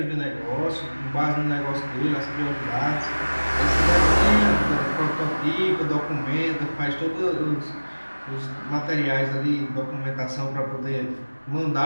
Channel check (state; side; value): inverted; both; correlation -1.00